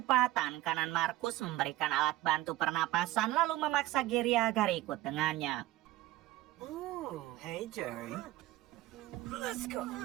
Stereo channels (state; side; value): quieter; left; 16.5 dB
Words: tangan kanan Markus memberikan alat bantu pernapasan lalu memaksa Gary agar ikut dengannya. Oh, hey Jerry. Let's go.